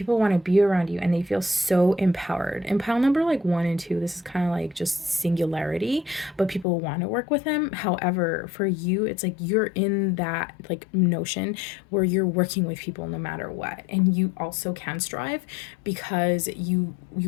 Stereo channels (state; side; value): drops out; right; at 6.7 s